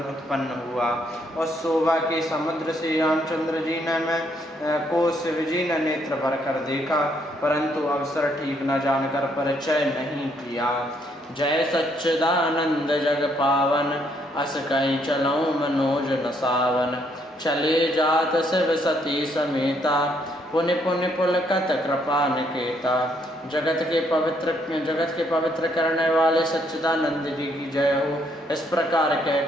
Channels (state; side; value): normal; both; correlation 0.71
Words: उत्पन्न हुआ। उस शोभा के समुद्र श्री रामचंद्र जी ने को शिव जी ने नेत्र भर कर देखा, परंतु अवसर ठीक न जानकर परिचय नहीं किया। जय सच्चिदानंद जग पावन, अस कहीं चलऊँ मनोज न सावन। चले जात शिव सती समेता, पुनि पुनि पुलकत कृपा निकेता। जगत के पवित्र करने वाले सच्चिदानंद जी की जय हो। इस प्रकार